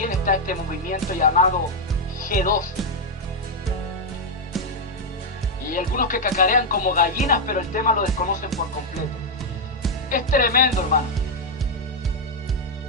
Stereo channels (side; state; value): both; normal; correlation 0.00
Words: está este movimiento llamado G12. Y hay algunos que cacarean como gallinas, pero el tema lo desconocen por completo. Es tremendo, hermano.